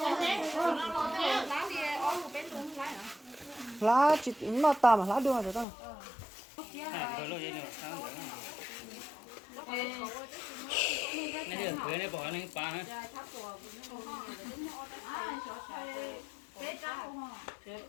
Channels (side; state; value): right; drops out; at 5.7 s